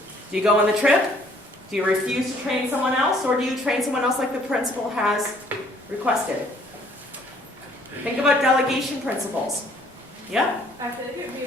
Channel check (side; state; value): both; normal; correlation 0.61